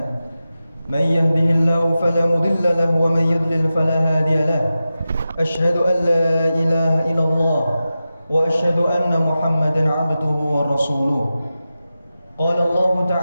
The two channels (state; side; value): inverted; both; correlation -0.93